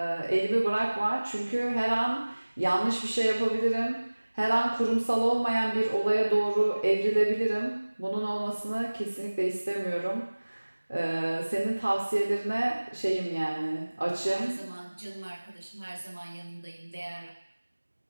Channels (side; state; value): both; inverted; correlation -1.00